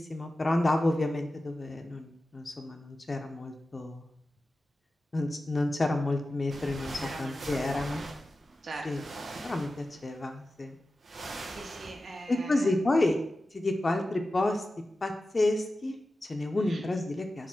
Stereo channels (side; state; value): both; normal; correlation 0.94